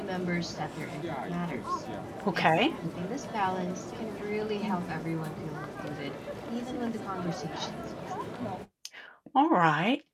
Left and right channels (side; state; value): both; identical; correlation 1.00